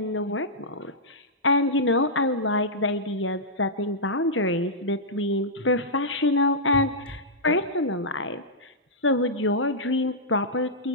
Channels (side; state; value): both; normal; correlation -0.11